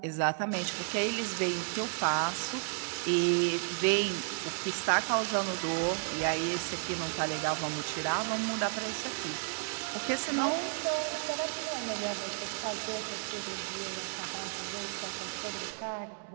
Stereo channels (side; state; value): left; silent; 56 dB below the other